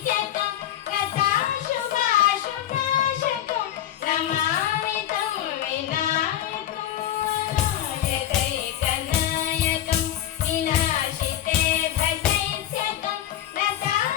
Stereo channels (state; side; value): quieter; right; 12.0 dB